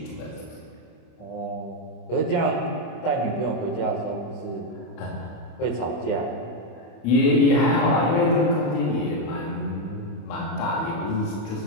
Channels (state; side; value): late; right; 25 ms